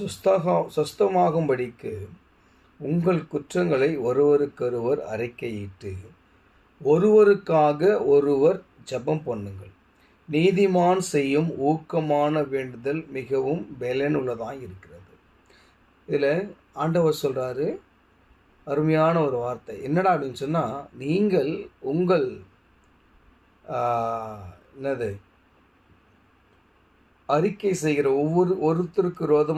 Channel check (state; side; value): identical; both; correlation 1.00